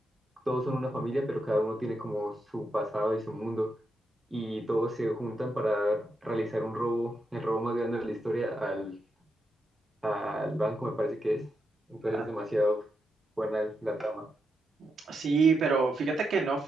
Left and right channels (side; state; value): both; normal; correlation 0.84